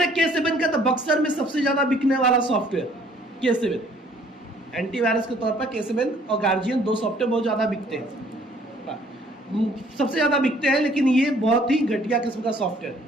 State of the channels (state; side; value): normal; both; correlation 0.59